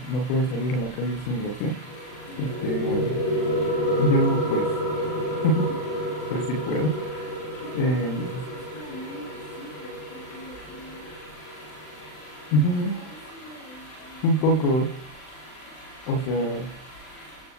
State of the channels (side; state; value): right; late; 39 ms